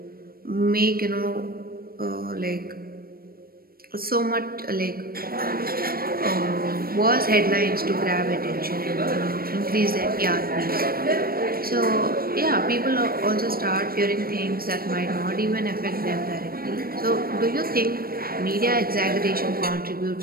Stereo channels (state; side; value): late; left; 0.43 ms